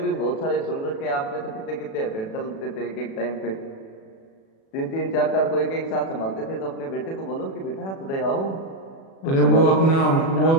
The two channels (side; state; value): right; late; 36 ms